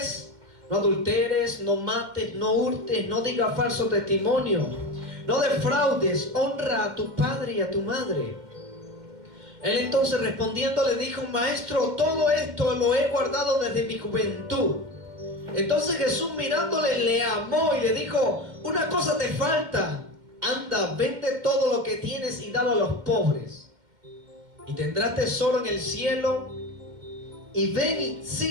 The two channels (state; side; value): late; left; 2.1 ms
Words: no adulteres, no mates, no hurtes, no digas falso testimonio, no defraudes, honra a tu padre y a tu madre. Él entonces respondiendo le dijo: Maestro, todo esto lo he guardado desde mi juventud. Entonces Jesús mirándole le amó y le dijo: una cosa te falta. Anda, vende todo lo que tienes y dalo a los pobres, y tendrás tesoro en el cielo. Y ven y